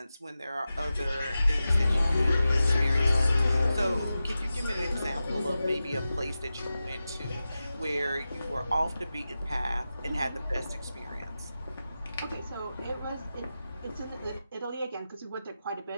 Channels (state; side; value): inverted; both; correlation -0.93